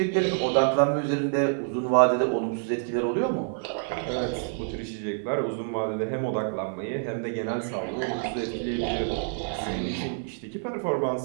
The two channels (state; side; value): silent; left; digital silence